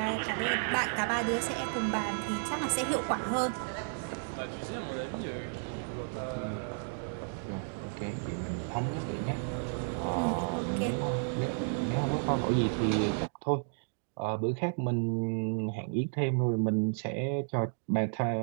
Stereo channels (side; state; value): left; silent; digital silence